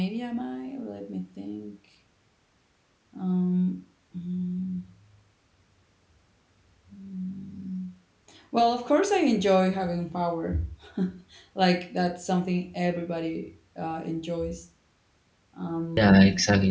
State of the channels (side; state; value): both; identical; correlation 1.00